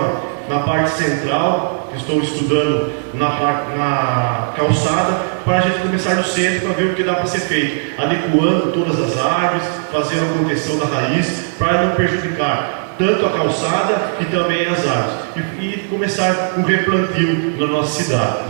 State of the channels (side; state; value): left; silent; digital silence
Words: na parte central, que estou estudando na calçada, para a gente começar no centro para ver o que dá para ser feito, adequando todas as árvores, fazendo a contenção da raiz, para não prejudicar tanto a calçada e também as árvores, e começar um replantio na nossa cidade.